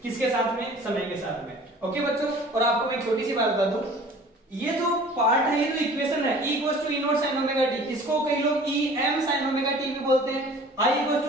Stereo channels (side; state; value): both; normal; correlation 0.47